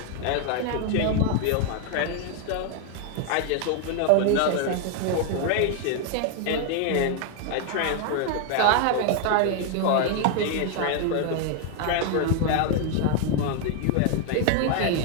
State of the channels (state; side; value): different; both; correlation 0.00